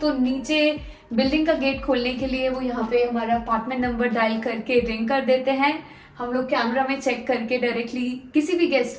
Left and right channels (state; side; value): identical; both; correlation 1.00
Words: तो नीचे बिल्डिंग का गेट खोलने के लिए वो यहाँ पे हमारा अपार्टमेंट नंबर डायल करके रिंग कर देते हैं। हम लोग कैमरा में चेक करके डायरेक्टली किसी भी